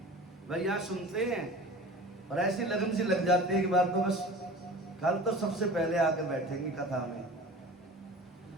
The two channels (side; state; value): both; normal; correlation 0.38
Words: भाई, यहाँ सुनते हैं और ऐसी लगन सी लग जाती है कि बात तो बस कल तो सबसे पहले आके बैठेंगे कथा में,